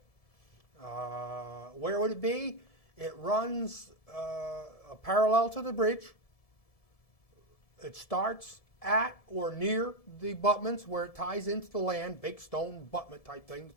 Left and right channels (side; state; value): right; late; 1.7 ms